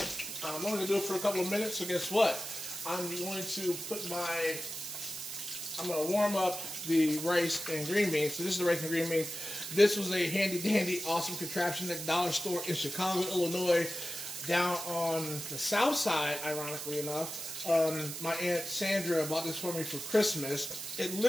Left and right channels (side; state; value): right; noise; hiss, 7 dB below the sound